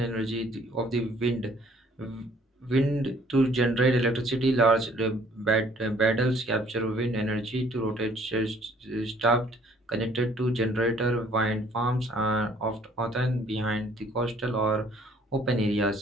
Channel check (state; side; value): normal; both; correlation 0.59